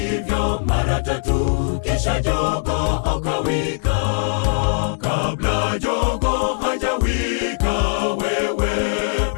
mara tatu, kisha jogoo akawika. Kabla jogoo hajawika wewe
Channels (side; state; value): right; silent; digital silence